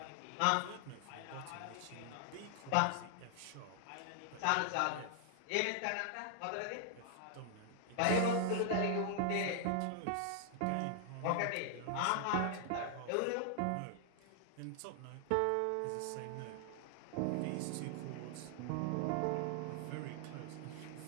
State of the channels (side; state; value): both; different; correlation 0.00